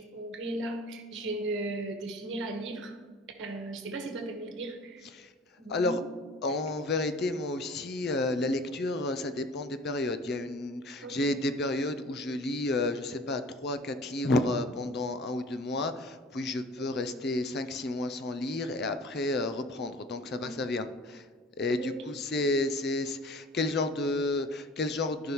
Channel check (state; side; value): normal; both; correlation 0.45